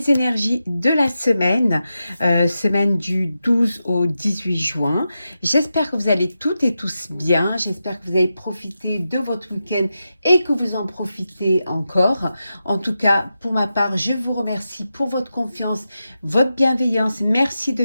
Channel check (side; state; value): both; inverted; correlation -0.90